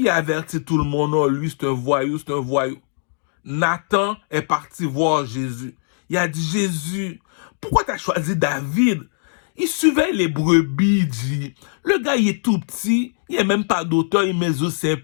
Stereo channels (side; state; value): right; silent; digital silence